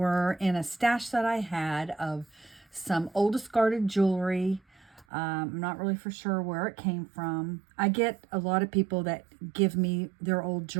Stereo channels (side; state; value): left; drops out; at 5.1 s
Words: in a stash that I had of some old discarded jewelry. I'm not really for sure where it came from. I get a lot of people that give me their old